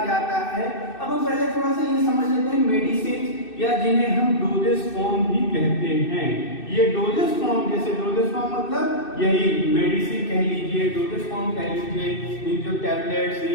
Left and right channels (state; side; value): late; right; 2.6 ms